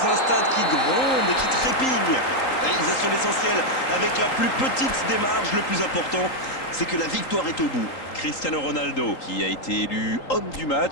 un stade qui gronde, qui trépigne. Réalisation l'essentiel avec la plus petite des marges. Le plus important, c'est que la victoire est au bout. Cristiano Ronaldo, qui a été élu homme du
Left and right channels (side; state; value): right; late; 3.8 ms